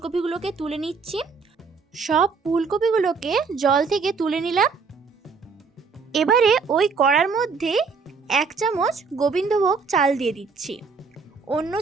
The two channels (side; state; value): left; quieter; 4.9 dB